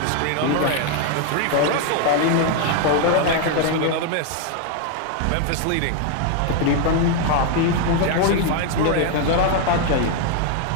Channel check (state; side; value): different; both; correlation 0.01